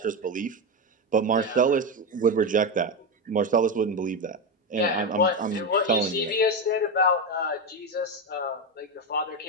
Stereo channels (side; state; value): both; normal; correlation 0.13